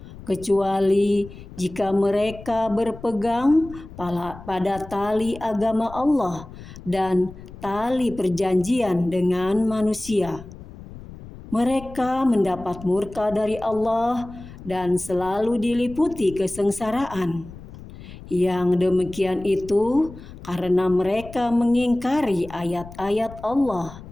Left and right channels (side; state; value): left; noise; rumble, 16 dB below the sound